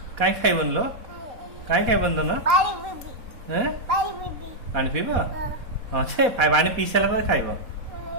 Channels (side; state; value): left; late; 4.2 ms